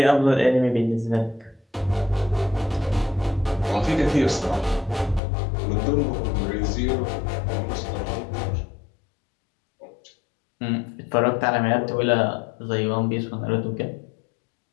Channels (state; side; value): drops out; right; at 5.2 s